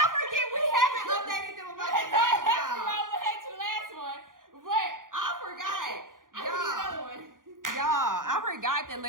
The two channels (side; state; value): left; late; 0.90 ms